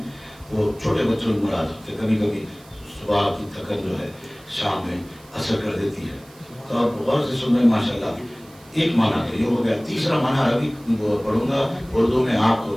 وہ چھوٹے بچوں کی مراد ہوتے، کبھی کبھی صبح کی تھکن جو ہے شام میں اثر کر دیتی ہے، تو آپ غور سے سن رہے ہیں ماشاءاللہ۔ ایک معنی تو یہ ہو گیا، تیسرا معنی عربی پڑھوں گا اردو میں آپ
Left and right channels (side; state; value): right; noise; hiss, 25 dB below the sound